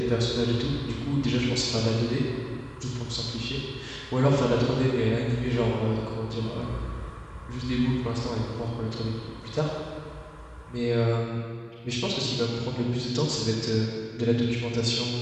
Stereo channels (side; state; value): both; identical; correlation 1.00